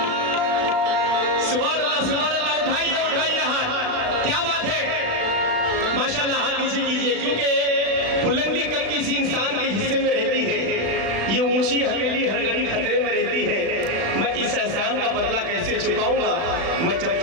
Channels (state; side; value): late; left; 36 ms